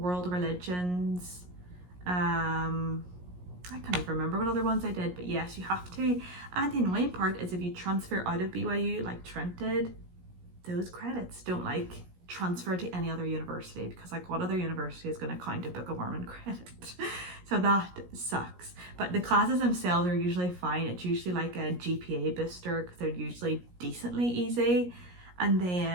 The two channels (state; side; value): late; left; 17 ms